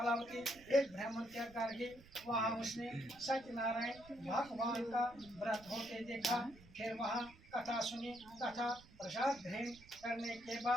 एक ब्राह्मण के घर गई। वहाँ उसने सत्यनारायण भगवान का व्रत होते देखा। फिर वहाँ कथा सुनी तथा प्रसाद ग्रहण करने के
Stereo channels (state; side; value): noise; right; rumble, 22 dB below the sound